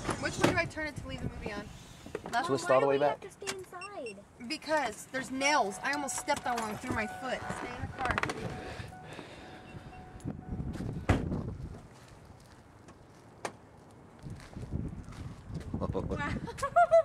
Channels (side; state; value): both; identical; correlation 1.00